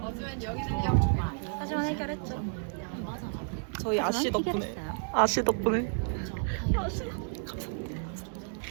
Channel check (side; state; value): left; silent; 57 dB below the other